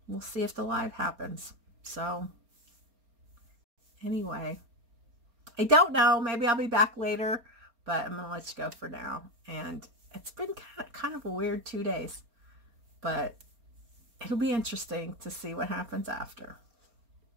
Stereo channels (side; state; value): left; late; 4.3 ms